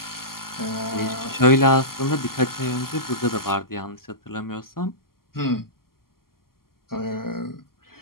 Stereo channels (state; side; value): late; right; 0.92 ms